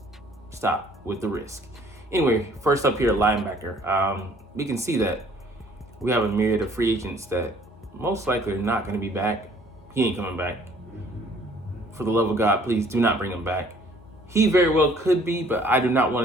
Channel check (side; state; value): both; normal; correlation 0.58